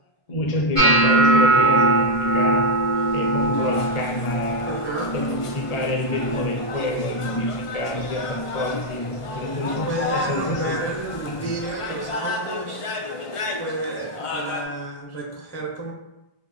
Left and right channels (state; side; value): late; right; 1.5 ms